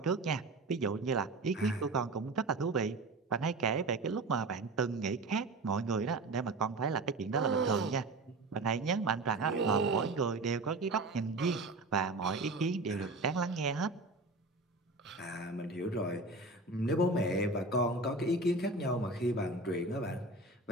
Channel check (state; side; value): quieter; left; 3.1 dB